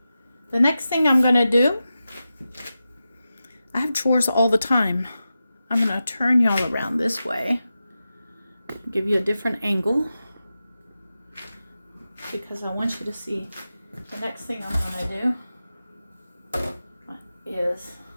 The next thing I'm going to do, I have chores all the time. I'm going to turn y'all around this way, give you a different angle, because I want you to see the next thing I'm going to do is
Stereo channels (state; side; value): inverted; both; correlation -0.92